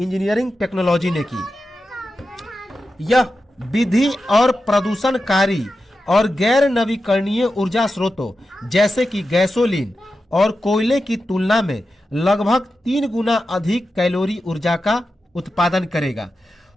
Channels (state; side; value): normal; both; correlation 0.91